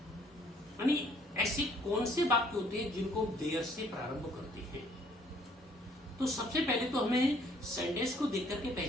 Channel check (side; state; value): both; normal; correlation 0.61